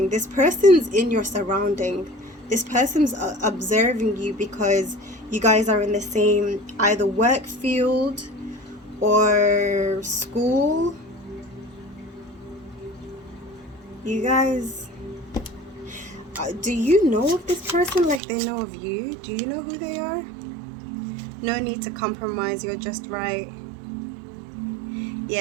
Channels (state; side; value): drops out; left; at 18.2 s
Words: this person's in your surrounding. This person's observing you because you guys are in the same either work field or school. You guys, do you know of this person like they know of you? Do you know who they are? No need to compromise, you're just right.